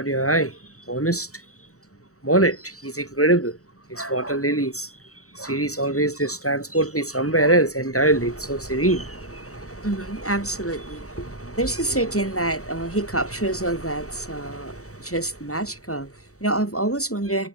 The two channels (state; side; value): late; right; 0.65 ms